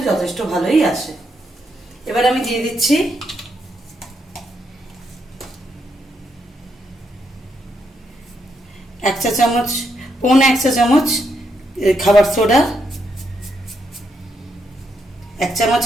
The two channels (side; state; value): both; normal; correlation 0.79